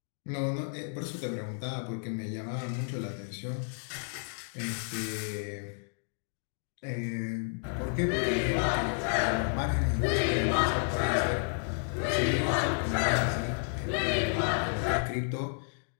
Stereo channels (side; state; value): right; silent; 57 dB below the other